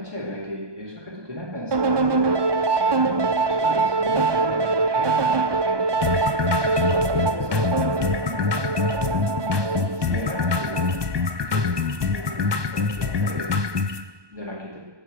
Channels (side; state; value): left; late; 1.2 ms